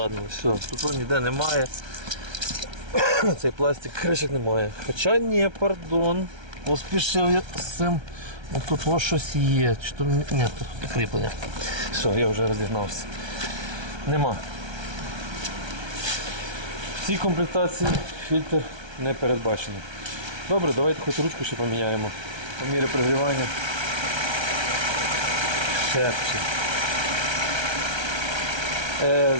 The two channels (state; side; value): late; left; 1.3 ms